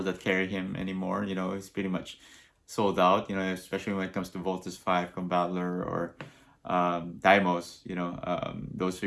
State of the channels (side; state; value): both; identical; correlation 1.00